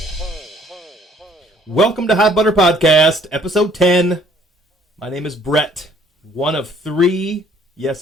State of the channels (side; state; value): both; normal; correlation 0.60